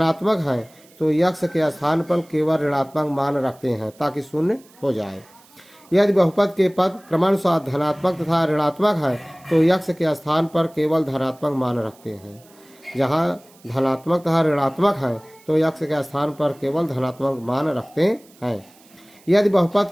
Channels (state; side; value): noise; right; hiss, 28 dB below the sound